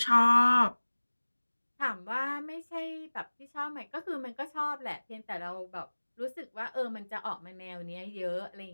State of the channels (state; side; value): inverted; both; correlation -1.00